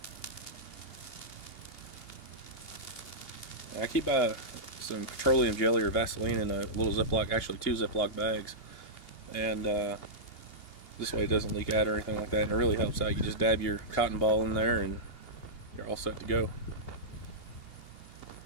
I keep some petroleum jelly or Vaseline in a little Ziploc, actually 2 Ziploc bags, and this way it doesn't leak out or anything like that, and it really helps out. You just dab your cotton ball in there and you're all set to go.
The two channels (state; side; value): late; right; 2.8 ms